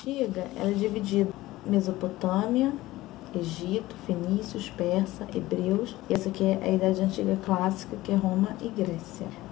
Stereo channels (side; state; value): right; quieter; 17.5 dB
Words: ela é dividida em Mesopotâmia, Egito, Fenícios, Persa, Hebreus. E essa aqui é a Idade Antiga clássica, que é Roma e Grécia.